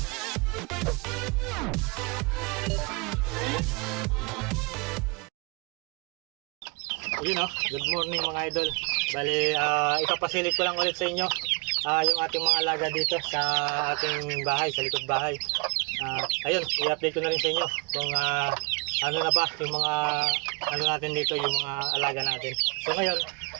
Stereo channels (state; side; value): quieter; left; 31.0 dB